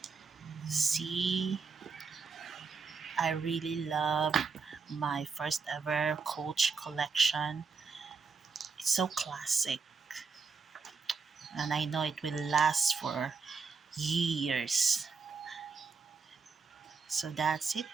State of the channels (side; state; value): left; quieter; 5.0 dB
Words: See, I really love my first ever Coach collection. It's so classic, and I know it will last for years. So that's it,